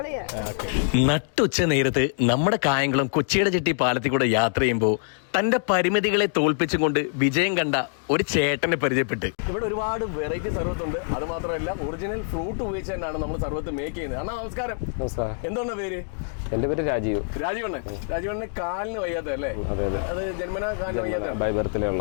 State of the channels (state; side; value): silent; right; digital silence